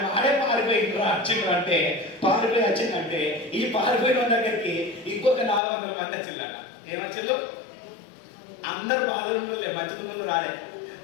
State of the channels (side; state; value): right; drops out; at 5.6 s